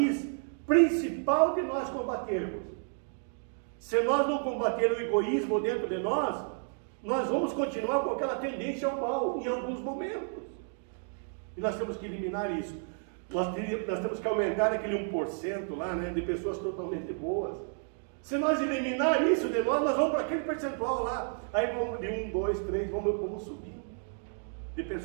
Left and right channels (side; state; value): left; silent; 57 dB below the other